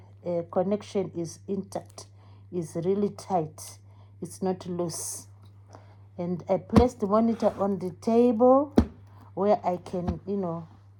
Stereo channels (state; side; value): identical; both; correlation 1.00